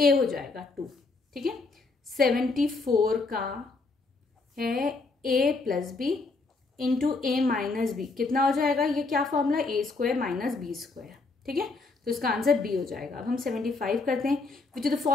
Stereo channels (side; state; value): right; quieter; 3.8 dB